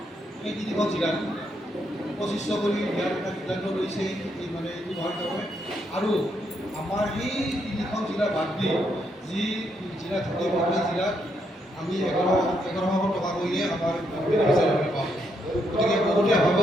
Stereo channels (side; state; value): both; normal; correlation 0.77